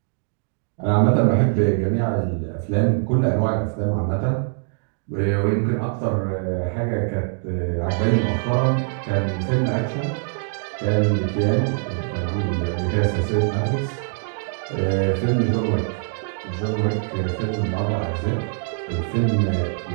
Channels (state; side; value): silent; left; 57 dB below the other